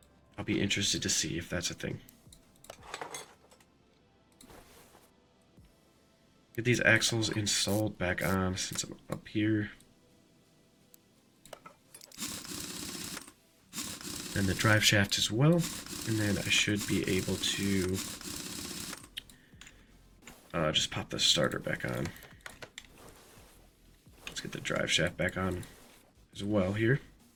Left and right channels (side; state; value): both; identical; correlation 1.00